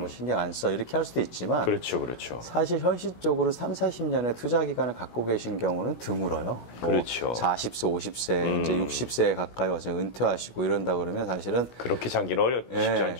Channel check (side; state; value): right; late; 16 ms